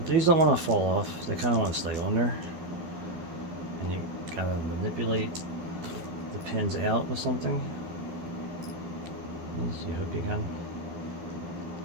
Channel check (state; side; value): late; left; 12 ms